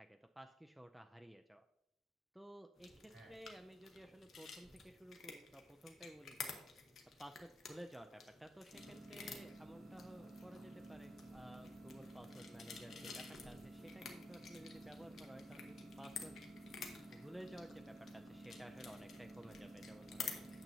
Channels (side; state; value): both; normal; correlation 0.83